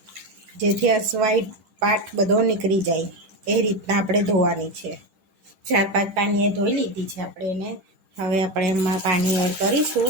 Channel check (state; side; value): late; left; 10 ms